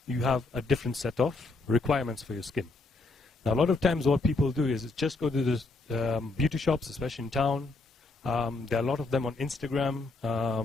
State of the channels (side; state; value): right; quieter; 3.5 dB